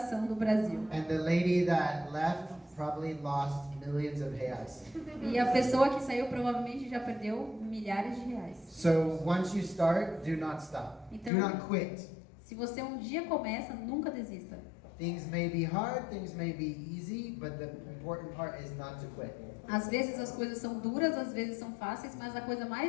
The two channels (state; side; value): drops out; right; at 11.3 s